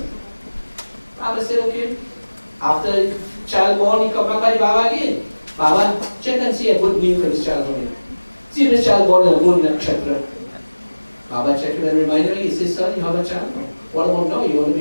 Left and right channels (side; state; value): both; inverted; correlation -1.00